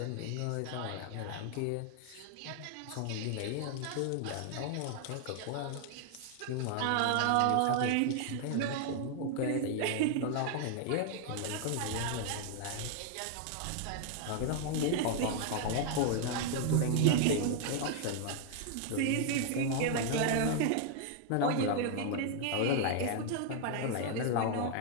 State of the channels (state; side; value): different; both; correlation 0.00